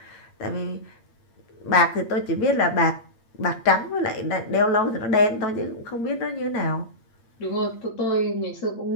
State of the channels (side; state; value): right; late; 8.6 ms